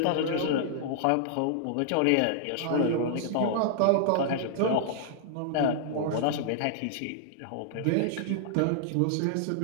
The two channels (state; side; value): different; both; correlation -0.01